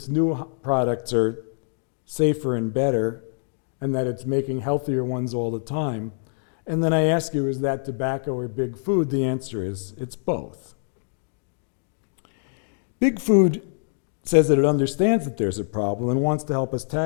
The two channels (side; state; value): right; silent; digital silence